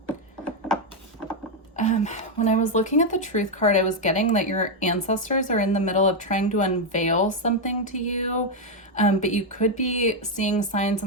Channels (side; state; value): both; normal; correlation 0.02